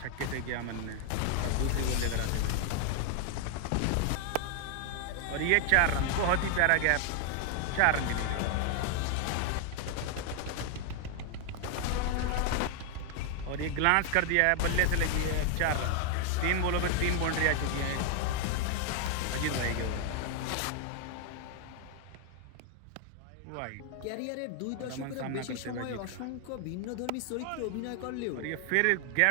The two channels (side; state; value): both; different; correlation 0.00